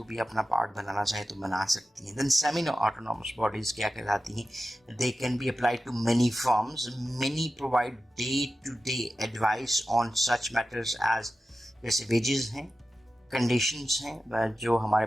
भी अपना पार्ट बनाना चाहे तो बना सकती हैं। देन सेमी ऑटोनॉमस बॉडीज क्या कहलाती हैं? They can be applied to many firms, many provide day to day advice on such matters as, जैसे वेजेस हैं, कंडीशंस हैं, जो हमारे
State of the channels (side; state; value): both; normal; correlation 0.93